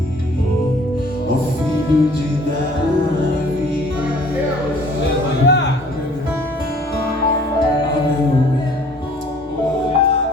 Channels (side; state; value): both; normal; correlation 0.54